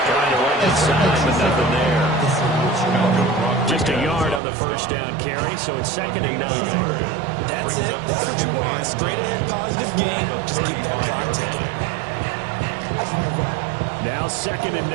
to run inside, but nothing there. Just a yard on the 1st down carry, so it's 2nd and 9. That's it. That's what you want. Straight ahead, positive game. Just keep that clock ticking. Now 2nd and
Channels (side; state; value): left; drops out; at 4.4 s